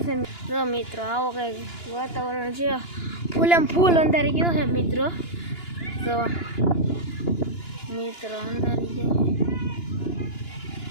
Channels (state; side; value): late; right; 2.9 ms